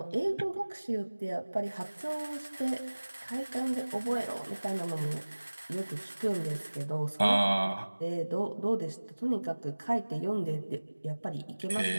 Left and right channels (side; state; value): both; inverted; correlation -1.00